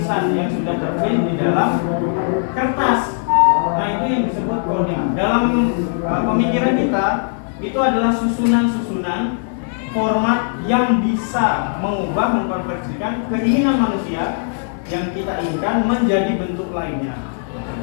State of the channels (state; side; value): silent; right; digital silence